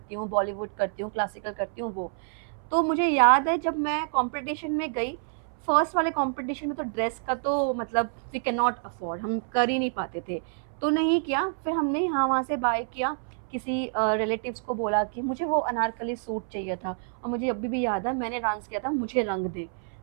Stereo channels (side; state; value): left; silent; 59 dB below the other